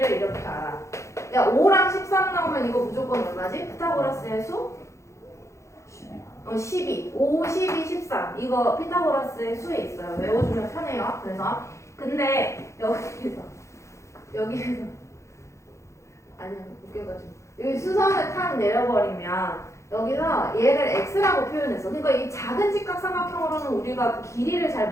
이렇게 알아. 야, 5랑 13 나오면 이거 무조건 얼마지? 피타고라스의 수? 12. 5, 12, 13. 이거 피타고라스의 수에 있어요. 외워주면 편해요. 그래서 근데 여기에서 아니야, 웃겨가지고 여기 수선을 탁 내려버리면 여기서 얘를 x라고 표현했어. 그러니까 이 작은 직각삼각형으로는 우리가 길이를 잘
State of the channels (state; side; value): late; right; 0.14 ms